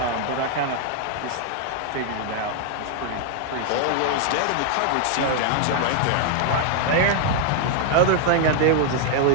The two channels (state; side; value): different; both; correlation 0.00